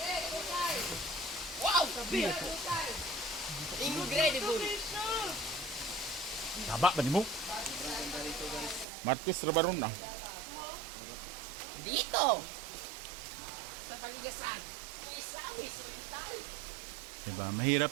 Wow, sabi. Incredible. Taba ba ni mo? Martis Rabaron na. Dito. Sa paligasan. Diba?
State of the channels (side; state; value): left; drops out; at 8.8 s